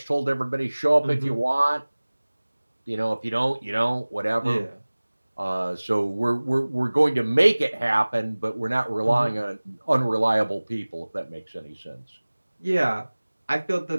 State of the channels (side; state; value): both; inverted; correlation -1.00